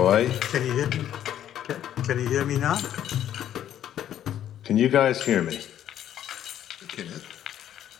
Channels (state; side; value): quieter; right; 10.9 dB